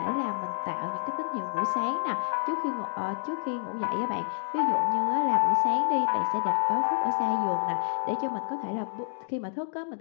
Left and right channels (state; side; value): silent; right; digital silence